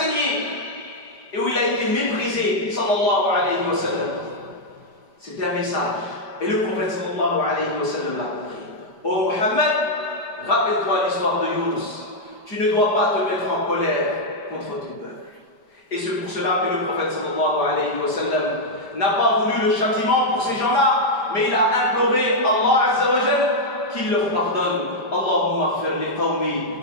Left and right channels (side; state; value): right; late; 4.9 ms